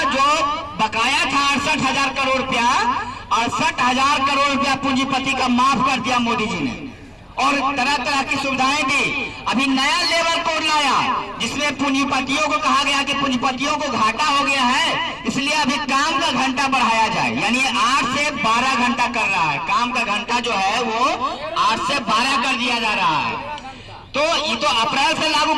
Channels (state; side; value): identical; both; correlation 1.00